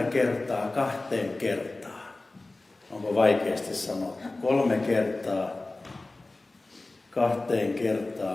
kertaa 2 kertaa. Onko vaikeasti sanottu? 3 kertaa 2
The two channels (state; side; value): quieter; right; 3.0 dB